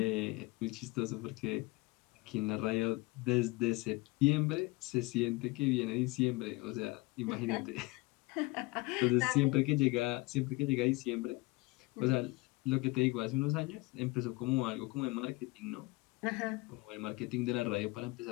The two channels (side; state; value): right; quieter; 23.4 dB